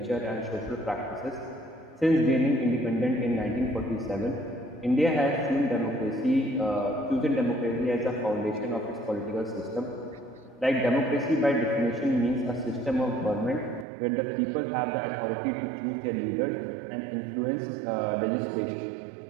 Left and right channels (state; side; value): drops out; left; at 13.9 s